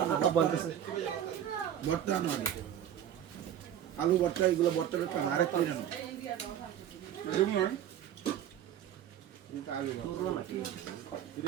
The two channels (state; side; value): quieter; left; 10.3 dB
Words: আলু ভর্তা এগুলো ভর্তা আরেক করে জানো